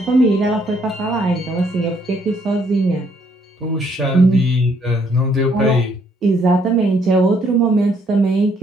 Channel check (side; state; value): both; normal; correlation 0.68